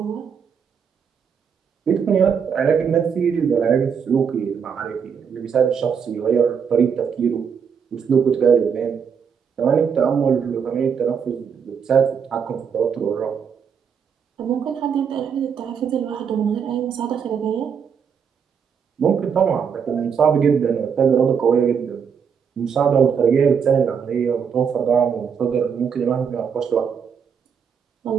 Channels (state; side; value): quieter; left; 6.9 dB